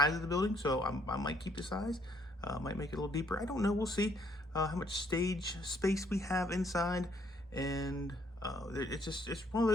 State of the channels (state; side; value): normal; both; correlation 0.67